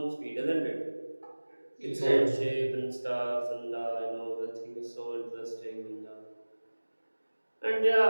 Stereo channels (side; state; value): both; inverted; correlation -1.00